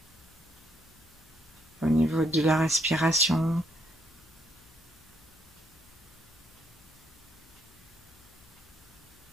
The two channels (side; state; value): left; noise; hum, 27 dB below the sound